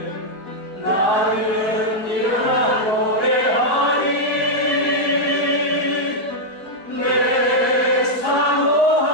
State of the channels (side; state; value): right; late; 4.8 ms